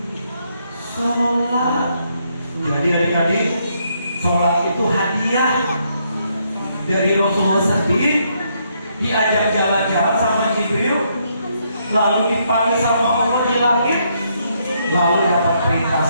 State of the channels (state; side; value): inverted; both; correlation -0.74